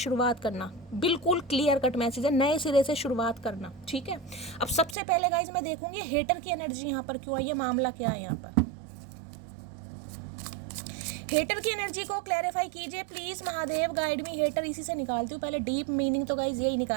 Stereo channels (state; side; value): drops out; left; at 5.0 s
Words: करना, बिल्कुल क्लियर कट मैसेज है, नए सिरे से शुरुआत करना। ठीक है, अब सबसे पहले गाइस मैं देखूंगी हेटर की एनर्जी यहाँ पर क्यों आई है, मामला क्या है यहाँ पर। हेटर की एनर्जी को क्लैरिफाई कीजिए please Mahadev, guide me. Hater इसी से निकालती हूँ पहले, डीप मीनिंग तो गाइस यही